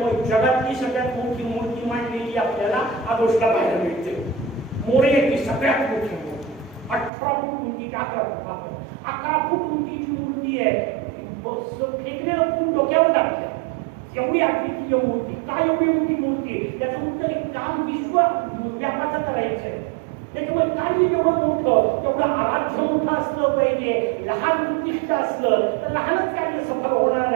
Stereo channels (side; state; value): left; drops out; at 7.1 s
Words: जगातली सगळ्यात मोठी मूर्ती मांडलेली आपल्याला आदोषला पाहायला मिळते. मोरयाची सगळ्यात मोठी मूर्ती 18 फूट उंचीची, 11 फूट उंचीची मूर्ती आहे. फेकलेलं फूट डोक्यावर टाकलं, एवढी अद्वितीय मूर्ती. काय एवढी मोठी मूर्ती, त्याचं उत्तर एक काम विश्व व्यापाचं करायचंय. त्याच्यामुळे कार्य जेवढं मोठं तेवढं आराध्य मोठं असलं पाहिजे. लहान उद्दिष्ट असलं तर लहानच कार्य सफल होणार